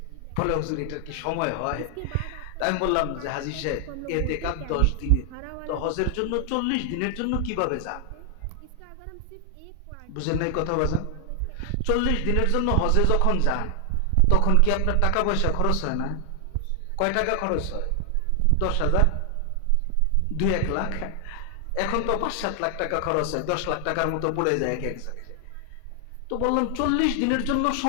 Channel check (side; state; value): both; different; correlation 0.00